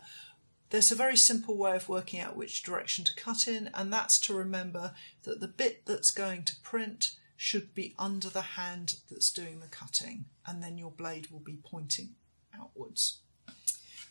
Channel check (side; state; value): both; inverted; correlation -1.00